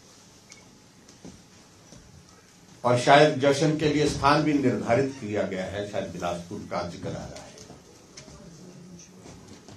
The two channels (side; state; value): both; identical; correlation 1.00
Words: और शायद जश्न के लिए स्थान भी निर्धारित किया गया है, शायद बिलासपुर का जिक्र आ रहा है।